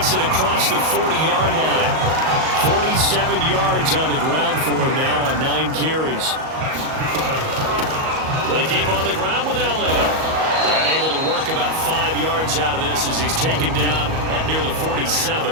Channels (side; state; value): left; late; 38 ms